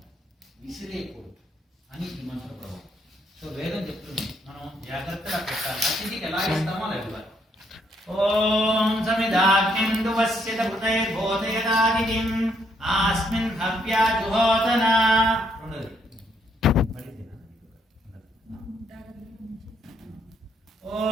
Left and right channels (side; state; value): both; normal; correlation 0.71